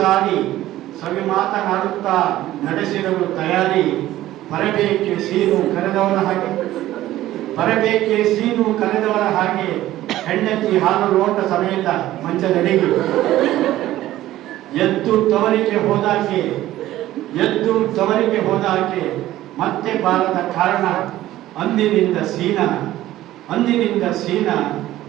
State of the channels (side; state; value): left; quieter; 14.7 dB